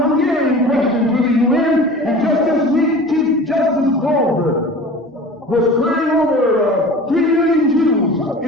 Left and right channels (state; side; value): normal; both; correlation 0.39